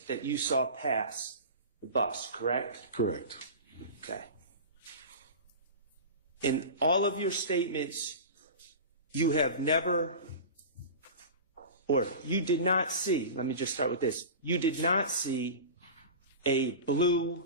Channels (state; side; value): inverted; both; correlation -0.31